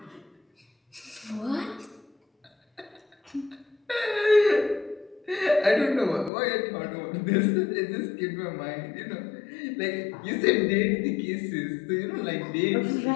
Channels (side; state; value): right; drops out; at 6.3 s